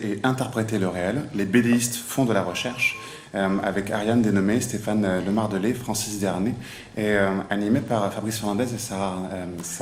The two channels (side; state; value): both; identical; correlation 1.00